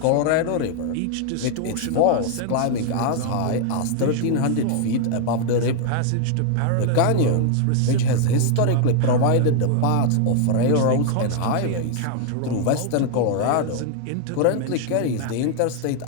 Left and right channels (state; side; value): different; both; correlation 0.00